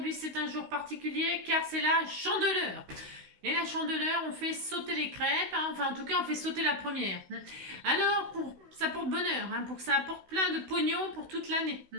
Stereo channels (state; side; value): late; left; 16 ms